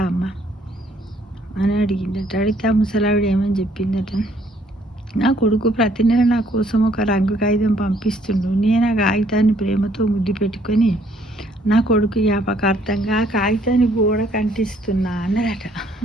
అమ్మ అని అడిగిందట. అడిగితే ఆ ముసలావిడ ఏమని చెప్పిందట, నా కొడుకు ప్రతి నెల నా కోసం ఒక రంగు కాగితం పంపిస్తుండు. నేను ఆ కాగితాన్ని ప్రేమతో ముద్దు పెట్టుకొని నా కొడుకు జ్ఞాపకార్థంగా ఆ కాగితాన్ని గోడకు అంటిస్తున్నా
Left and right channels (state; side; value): normal; both; correlation 0.64